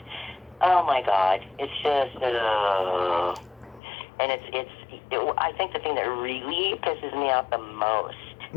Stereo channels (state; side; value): drops out; right; at 3.8 s